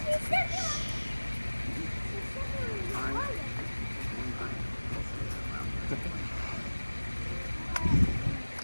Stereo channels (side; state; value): both; inverted; correlation -1.00